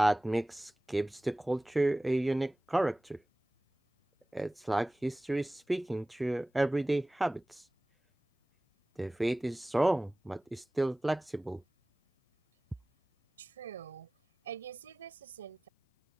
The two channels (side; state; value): both; normal; correlation 0.98